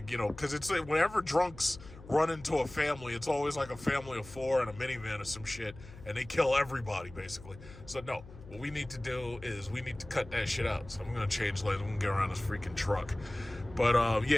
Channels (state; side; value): noise; left; hum, 17 dB below the sound